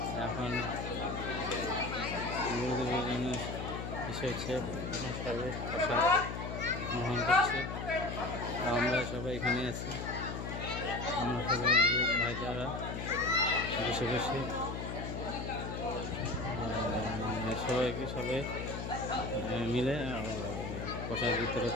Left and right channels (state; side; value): noise; left; hum, 5 dB below the sound